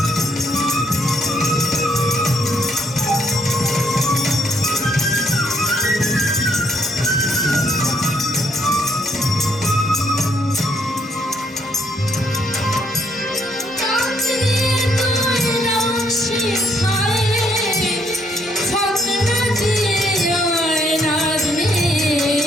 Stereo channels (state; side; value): normal; both; correlation 0.71